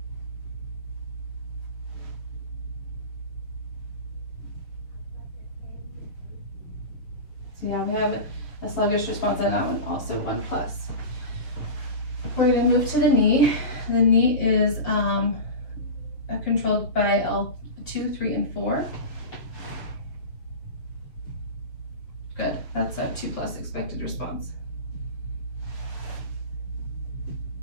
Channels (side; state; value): right; late; 6.8 ms